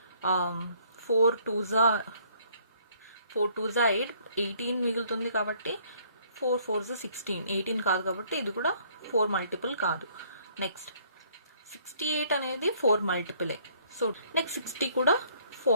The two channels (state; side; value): inverted; both; correlation -0.63